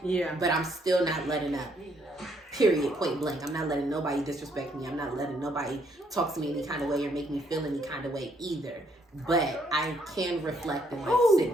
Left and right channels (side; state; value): both; normal; correlation 0.70